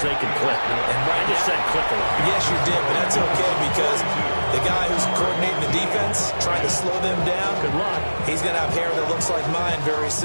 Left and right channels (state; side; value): inverted; both; correlation -1.00